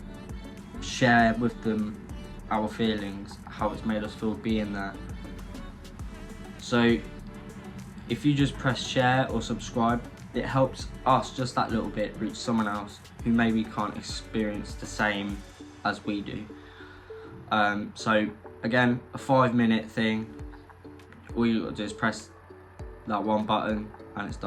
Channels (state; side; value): identical; both; correlation 1.00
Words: share with them our feelings, how it's made us feel being there. So if you just press share or subscribe, it helps us just that little bit reach someone else who maybe can't experience the same as we do. So again, a 5-minute thing. All you got to do is press that one button and it's